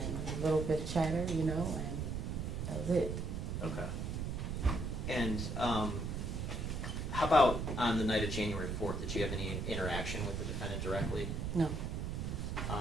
a little bit of chatter, you know, and that was it. Okay. And how about on the night of January 4th? Did you have any interaction with the defendant directly? No.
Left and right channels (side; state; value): right; noise; rumble, 2 dB below the sound